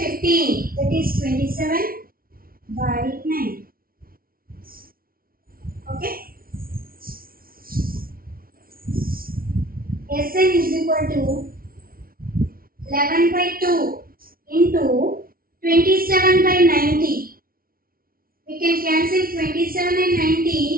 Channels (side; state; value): left; late; 0.43 ms